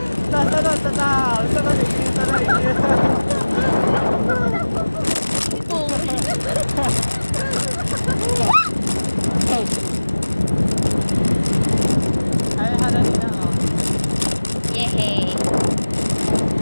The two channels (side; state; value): both; inverted; correlation -1.00